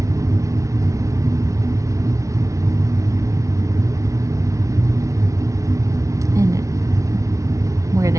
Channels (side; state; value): left; late; 0.15 ms